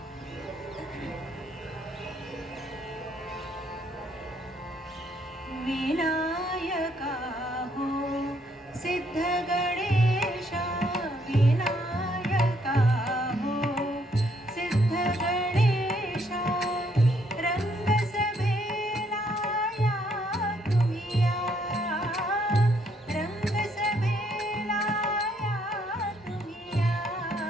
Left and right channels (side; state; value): both; normal; correlation 0.70